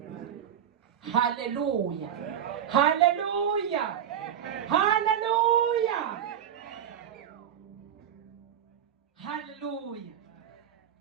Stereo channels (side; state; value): left; quieter; 9.3 dB